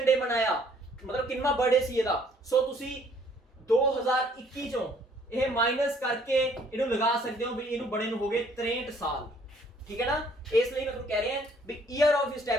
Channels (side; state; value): both; normal; correlation 0.61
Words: ਡੇ ਮਨਾਇਆ, ਮਤਲਬ ਕਿੰਨਾ ਬਰਥਡੇ ਸੀ ਇਹਦਾ। ਸੋ ਤੁਸੀਂ 2021 ਚੋਂ ਇਹ ਮਾਈਨਸ ਕਰਕੇ ਇਹਨੂੰ ਲਗਾ ਸਕਦੇ ਹੋ ਵੀ ਇਹਨੂੰ ਬਣੇ ਨੂੰ ਹੋ ਗਏ 63 ਸਾਲ, ਠੀਕ ਹੈ ਨਾ। ਇਸ ਲਈ ਮੈਂ ਤੁਹਾਨੂੰ ਕਹਿ ਰਿਹਾ ਵੀ ਈਅਰ ਆਫ